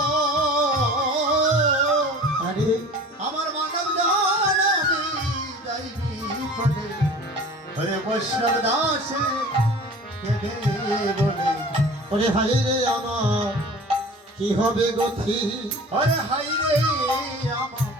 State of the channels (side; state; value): both; normal; correlation 0.42